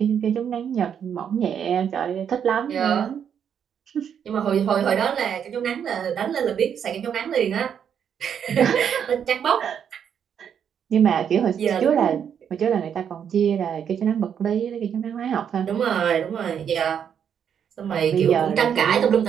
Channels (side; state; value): left; quieter; 8.2 dB